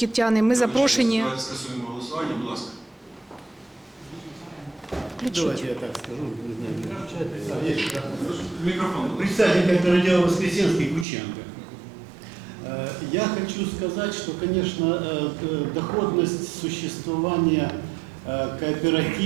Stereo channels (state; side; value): drops out; left; at 11.1 s